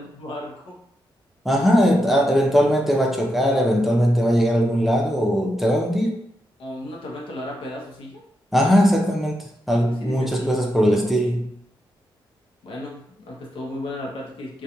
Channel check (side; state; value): both; normal; correlation 0.85